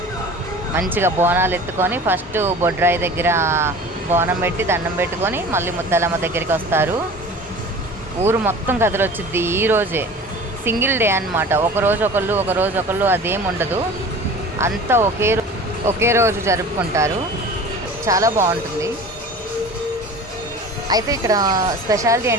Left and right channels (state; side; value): normal; both; correlation 0.40